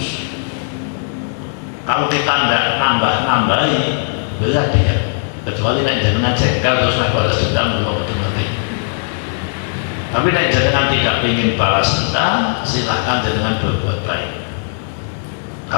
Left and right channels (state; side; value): silent; right; digital silence